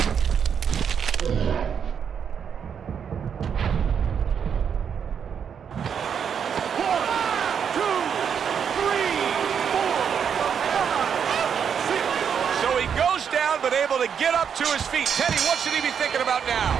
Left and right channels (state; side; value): quieter; left; 7.5 dB